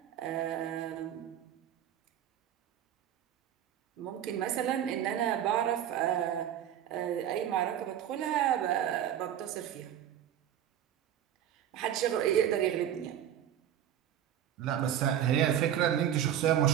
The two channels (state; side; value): quieter; left; 10.5 dB